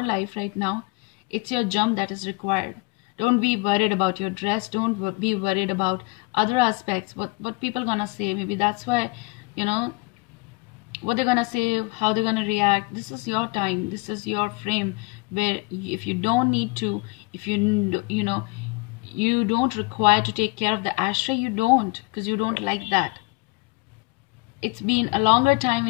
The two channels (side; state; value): right; quieter; 26.6 dB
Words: life right now, it's your jump that is required. Don't be worried about your dress. Don't be worried about other aspects, what people gonna say. Maybe that's why, you know, what they're gonna say, how they're gonna react. This is your time. This is your frame where if you don't need to, if you know, you don't require to take care of the ashtray, you don't, because you don't like that. It's been a longer time